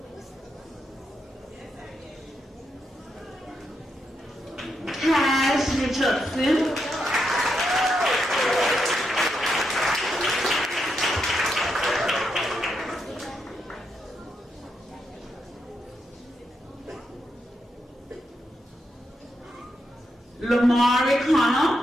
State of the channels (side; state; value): both; normal; correlation 0.83